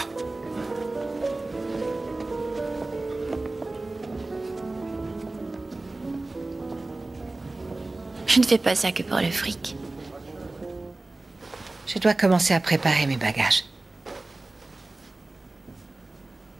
Je ne fais pas ça que pour le fric. Je dois commencer à préparer mes bagages.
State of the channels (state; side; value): quieter; left; 3.0 dB